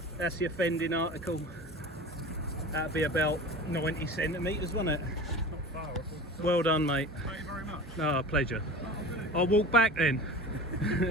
That's the offending article. That'd be about 90 centimetres, wouldn't it? Not far. Well done, mate. Thank you very much. Oh, pleasure. I'll walk back then.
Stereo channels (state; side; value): normal; both; correlation 0.36